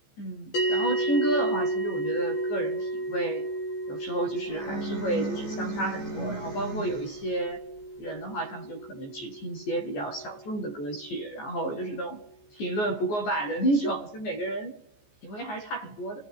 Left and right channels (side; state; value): right; late; 14 ms